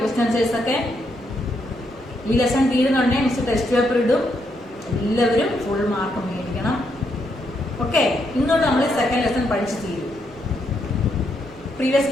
questions ഒക്കെ? ഈ lesson തീരുന്നുണ്ടെങ്കിൽ miss test paper ഇടും. എല്ലാവരും full mark മേടിക്കണം. Okay, ഇന്നോട്ട് നമ്മൾ second lesson പഠിച്ചു തീരും. പ്രീവിയസ്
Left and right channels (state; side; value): normal; both; correlation 0.78